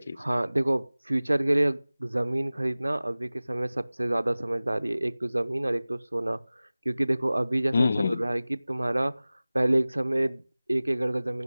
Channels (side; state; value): both; inverted; correlation -0.98